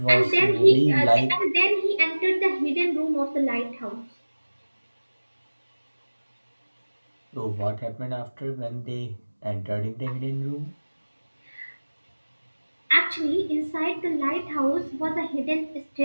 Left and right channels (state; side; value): inverted; both; correlation -1.00